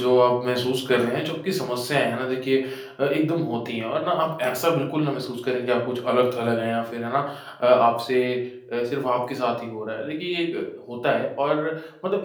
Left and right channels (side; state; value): both; identical; correlation 1.00